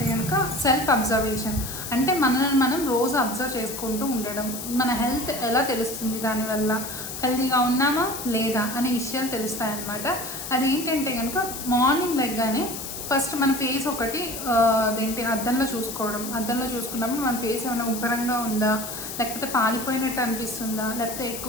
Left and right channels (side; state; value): left; noise; hiss, 8 dB below the sound